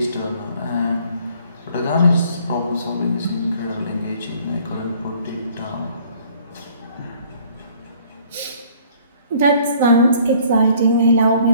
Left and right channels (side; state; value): both; inverted; correlation -0.57